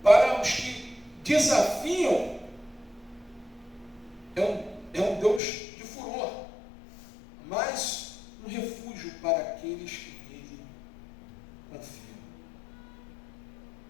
Para os que desafiam, é um Deus de furor, mas um refúgio para aqueles que nele confiam.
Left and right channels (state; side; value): drops out; right; at 5.4 s